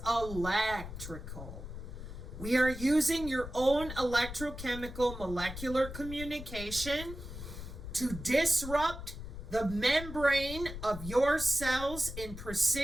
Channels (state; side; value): noise; left; rumble, 10 dB below the sound